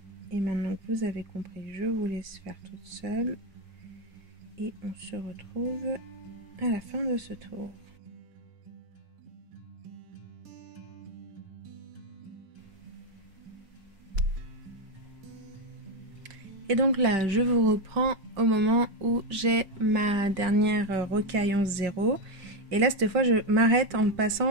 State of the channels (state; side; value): late; left; 5.2 ms